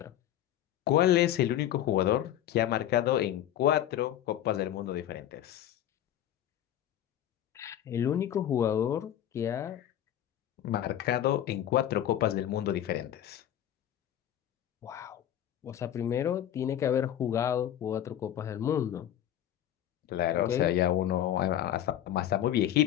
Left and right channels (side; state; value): right; quieter; 11.5 dB